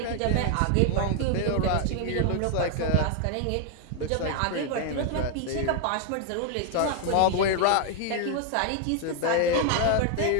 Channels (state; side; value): different; both; correlation 0.00